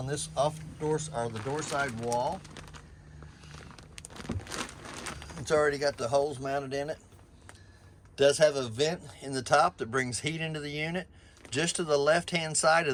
this off door or the door side wall. It's already got the holes mounted in it. Does have a vent in the top that brings heat into the unit. Just to the left hand side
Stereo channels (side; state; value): both; identical; correlation 1.00